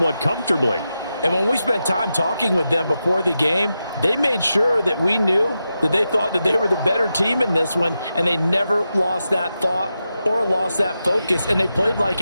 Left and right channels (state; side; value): inverted; both; correlation -0.89